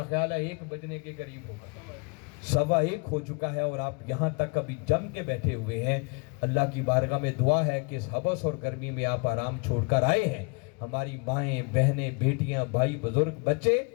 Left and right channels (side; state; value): right; quieter; 32.7 dB